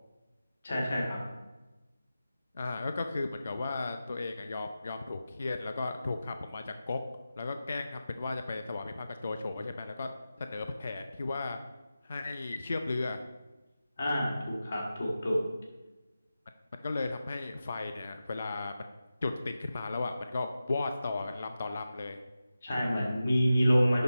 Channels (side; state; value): both; inverted; correlation -0.93